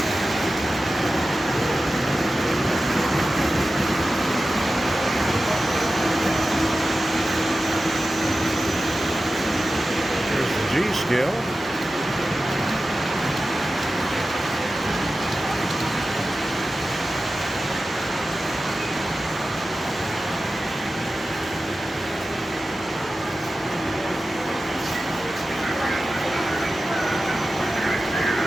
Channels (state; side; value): normal; both; correlation 0.94